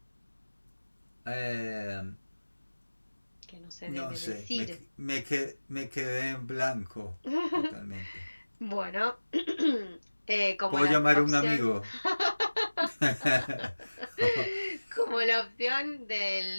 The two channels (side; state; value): both; inverted; correlation -1.00